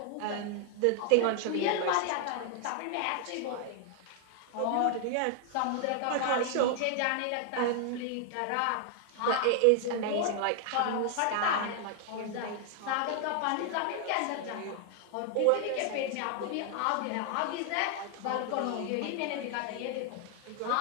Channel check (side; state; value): both; different; correlation 0.00